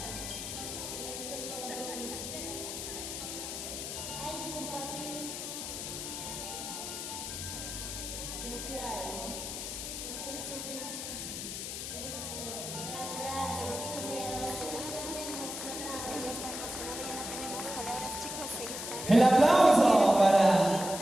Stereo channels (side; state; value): left; noise; hiss, 6 dB below the sound